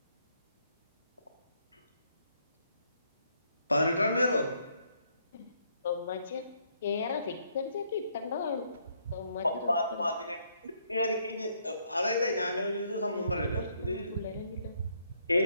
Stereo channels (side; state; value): both; inverted; correlation -0.72